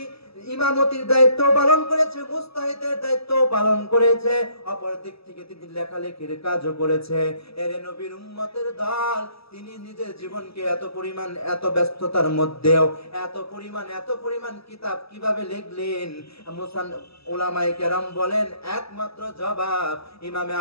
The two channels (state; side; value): late; right; 0.77 ms